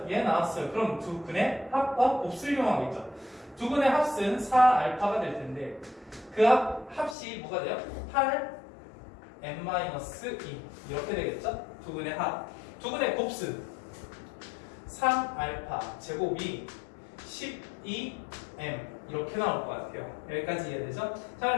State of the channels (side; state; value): right; drops out; at 7.2 s